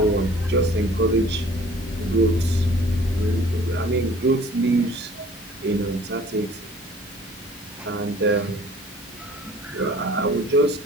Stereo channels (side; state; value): both; normal; correlation 0.51